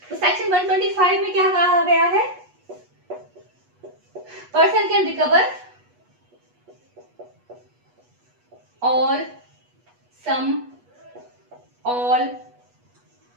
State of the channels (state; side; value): late; left; 8.2 ms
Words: तो सेक्शन 125 में क्या कहा गया है, person can recover all sum, all